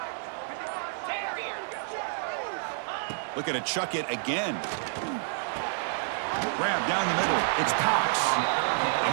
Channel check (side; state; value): left; silent; digital silence